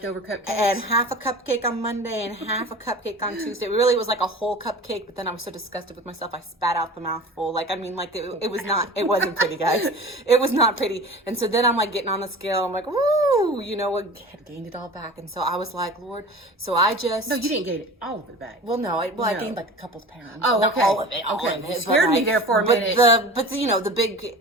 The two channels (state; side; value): normal; both; correlation 0.37